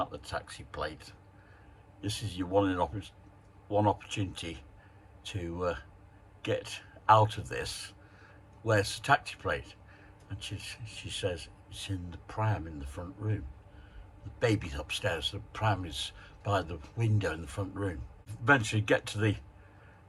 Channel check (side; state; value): both; identical; correlation 1.00